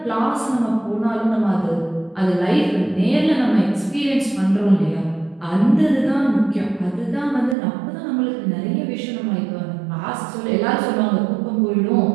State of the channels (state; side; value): drops out; left; at 7.6 s